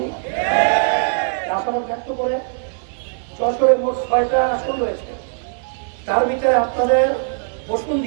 আশাবাদ ব্যক্ত করে যশোরে মোট 6টা আসন রয়েছে, তার ভিতরে আপনাদের বসুন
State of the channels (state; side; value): silent; left; digital silence